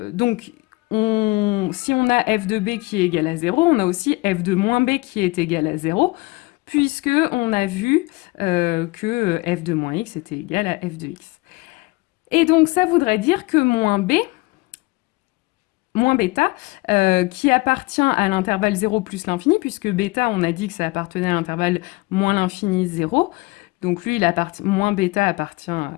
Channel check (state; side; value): quieter; right; 23.5 dB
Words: si on a f de b qui est égal à 0, on a aussi f de moins b qui est égal à 0, puisque on a vu que f de moins x était égal à f de x. Et donc, ça voudrait dire que moins bêta, qui appartient à l'intervalle 0 plus l'infini, puisque bêta, on a dit que ça appartenait à l'intervalle moins l'infini 0, donc lui, moins bêta appartient,